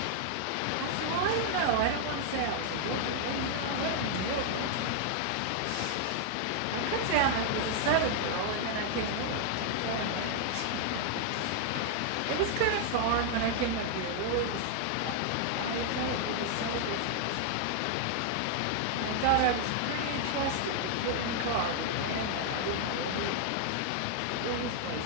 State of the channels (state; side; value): different; both; correlation 0.00